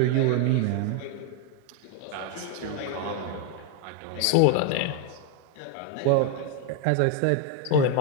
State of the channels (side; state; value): both; different; correlation 0.01